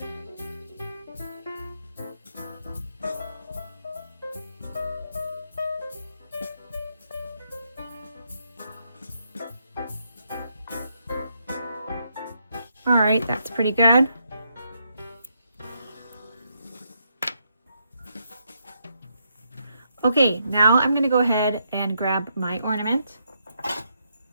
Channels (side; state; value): both; inverted; correlation -0.78